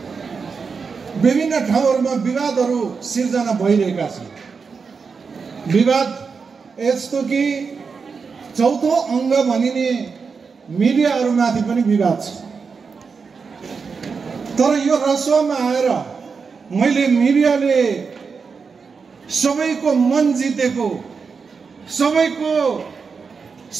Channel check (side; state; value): left; quieter; 5.3 dB